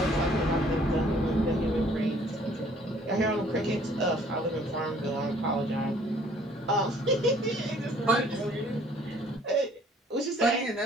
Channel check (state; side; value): normal; both; correlation 0.58